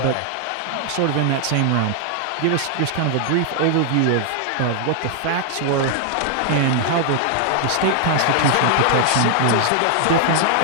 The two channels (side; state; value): both; different; correlation 0.00